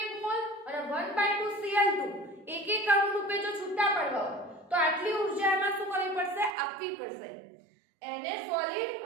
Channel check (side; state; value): left; drops out; at 6.6 s